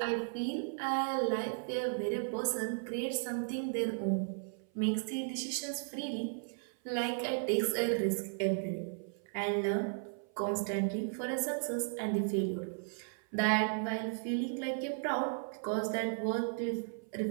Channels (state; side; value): silent; left; 54 dB below the other